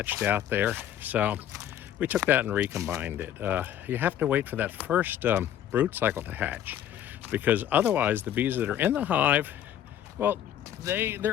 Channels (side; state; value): right; quieter; 10.7 dB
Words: out there. So we took that and recombined it. You have to wait for that first brood cycle to hatch, because otherwise the bees that are in the hive, well,